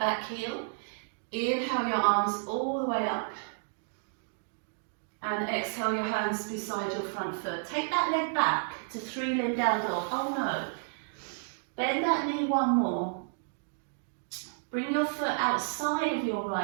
heel, inhale your arms all the way up, and exhale your hands beside your front foot. Take that leg back to 3-limb down dog. Oh no. Bend that knee one more. Bring your foot outside of your right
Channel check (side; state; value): left; silent; digital silence